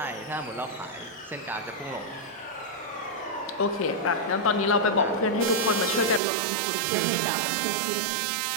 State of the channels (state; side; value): drops out; left; at 6.2 s